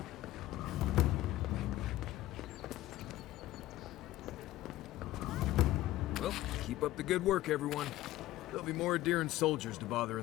Well, keep up the good work, everyone. There'll be more Adherent soldiers to bother in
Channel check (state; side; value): quieter; right; 15.7 dB